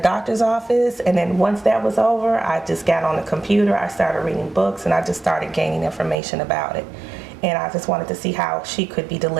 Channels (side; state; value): left; drops out; at 6.2 s